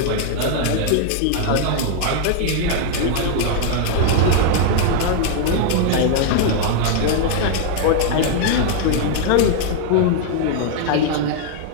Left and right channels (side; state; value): both; different; correlation 0.00